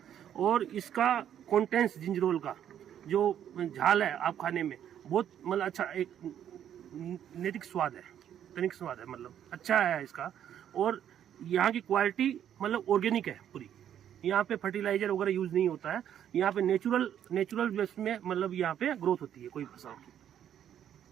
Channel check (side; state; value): left; quieter; 10.0 dB